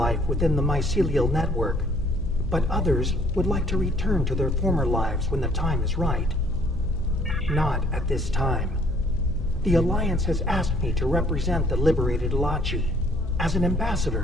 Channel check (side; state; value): left; noise; hum, 7 dB below the sound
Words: within the mycelial network, but others would like to return to their former lives when the time is right. Not at this time. The Alliance has asked me to represent the liberated Alachi. As an